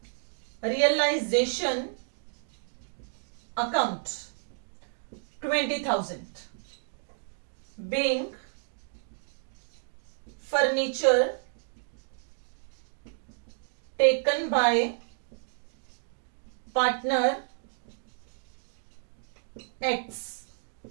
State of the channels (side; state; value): left; silent; digital silence